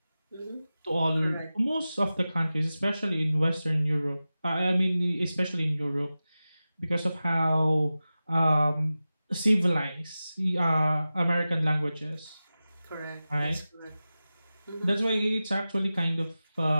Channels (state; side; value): inverted; both; correlation -0.95